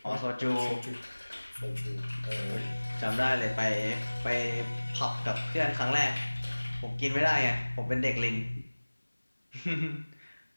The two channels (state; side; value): inverted; both; correlation -1.00